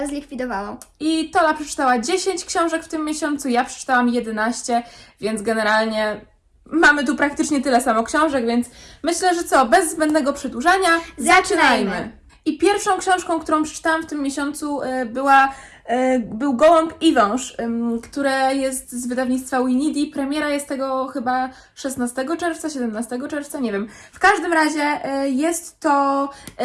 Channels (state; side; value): identical; both; correlation 1.00